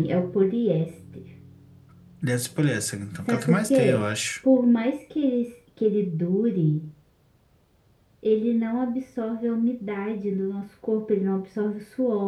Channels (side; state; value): both; identical; correlation 1.00